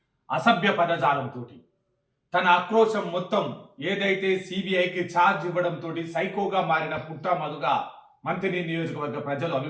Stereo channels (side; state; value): both; identical; correlation 1.00